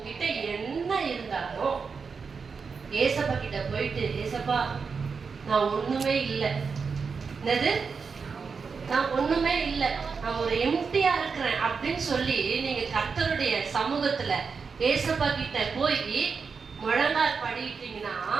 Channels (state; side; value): quieter; left; 5.3 dB